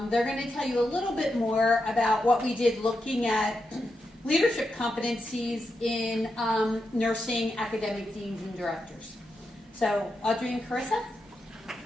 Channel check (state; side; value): normal; both; correlation 0.86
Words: they're going to tell you a little bit more about what we did looking at leadership competencies in nursing academic deans and directors. So, Audrey and Carissa?